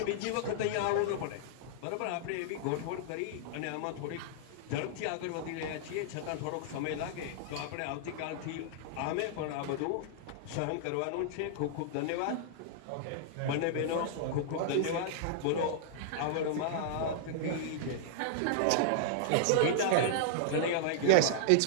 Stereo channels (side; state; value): both; different; correlation -0.01